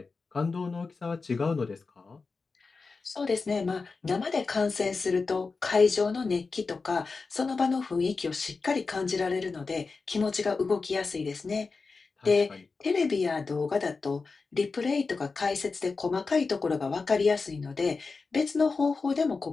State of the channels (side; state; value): right; quieter; 4.3 dB